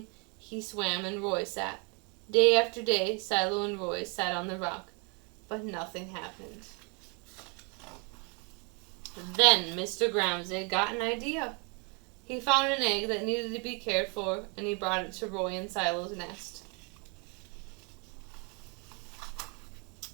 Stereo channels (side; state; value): left; quieter; 33.6 dB